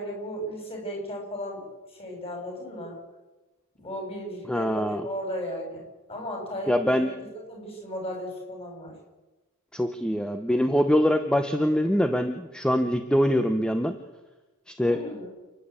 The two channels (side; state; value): both; normal; correlation 0.85